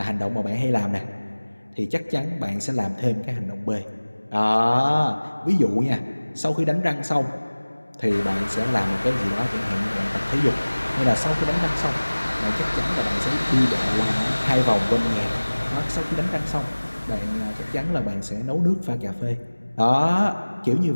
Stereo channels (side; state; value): both; inverted; correlation -1.00